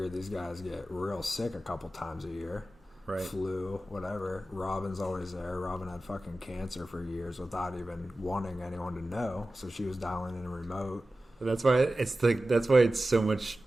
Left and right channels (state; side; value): normal; both; correlation 0.95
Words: these guys get real sick a couple times a year. Right. Flu, whatever. Robin's always there. Robin had fucking cancer for years without even wanting anyone to know, so she was dialing in a remote. That's why it's so much